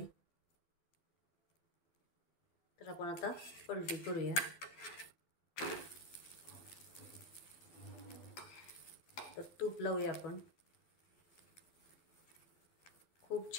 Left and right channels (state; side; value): late; right; 12 ms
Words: तर आपण आता पलटी करूया. तर तूप लावूया आपण. खूप